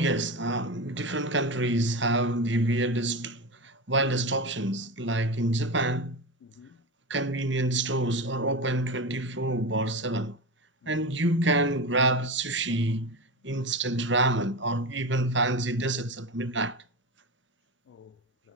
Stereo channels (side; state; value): both; normal; correlation 0.22